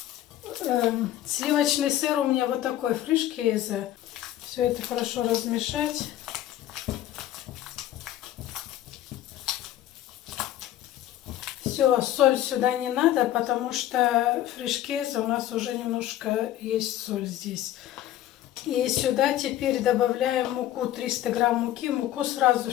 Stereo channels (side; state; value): right; quieter; 13.0 dB